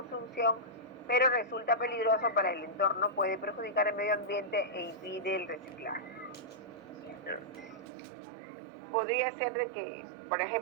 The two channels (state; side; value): drops out; left; at 7.9 s